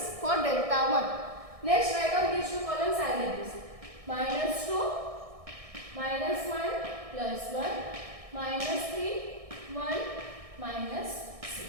for delta 1. Next write down these two columns as it is. Minus 2, minus 1 plus 1, minus 3, 1, minus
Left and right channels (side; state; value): left; late; 1.6 ms